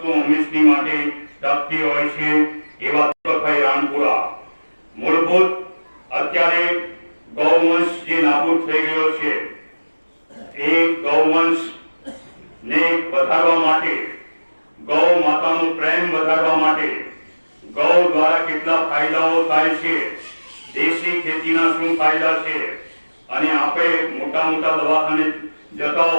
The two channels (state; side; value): inverted; both; correlation -1.00